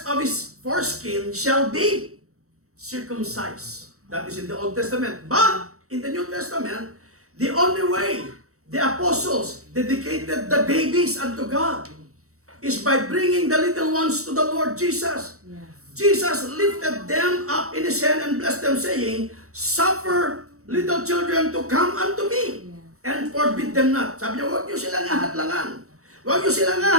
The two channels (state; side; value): late; left; 0.65 ms